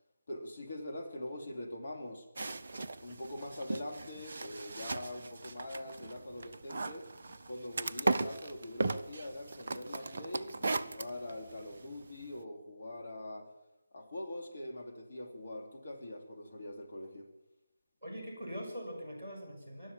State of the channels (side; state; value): both; inverted; correlation -0.91